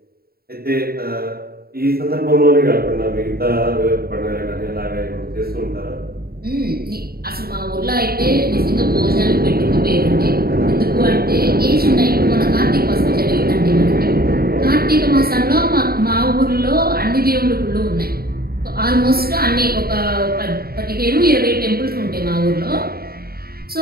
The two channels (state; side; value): late; left; 0.44 ms